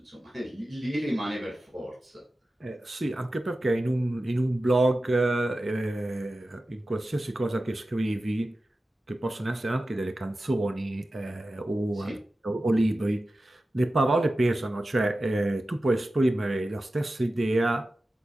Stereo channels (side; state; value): both; normal; correlation 0.94